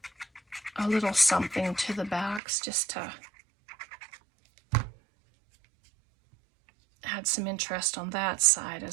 a little something to the backs just to add some interest on that side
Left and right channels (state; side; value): drops out; left; at 2.4 s